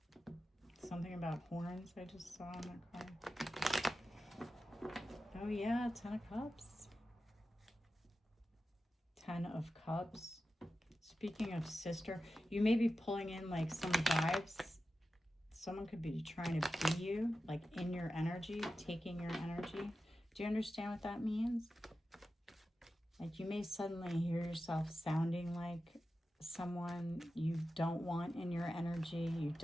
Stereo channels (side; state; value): both; normal; correlation 0.93